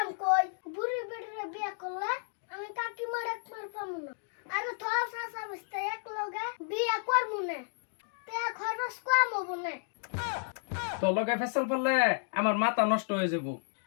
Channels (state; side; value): silent; right; digital silence